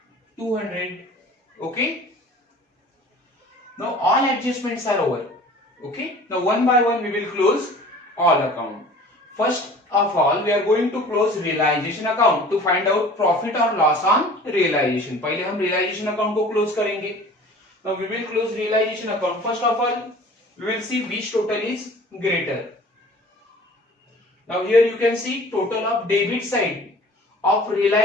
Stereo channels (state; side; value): normal; both; correlation 0.46